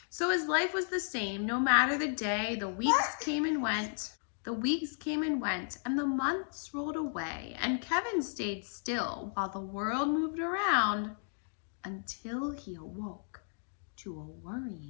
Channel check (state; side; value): silent; right; digital silence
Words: So his life was the same, no matter the day. The weeks came and went. And the months rolled away. And Kevin stayed still while the world moved around, until he awoke to a